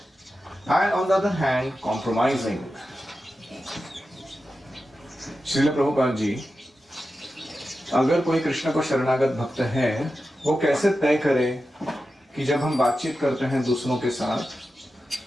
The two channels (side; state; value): both; normal; correlation 0.91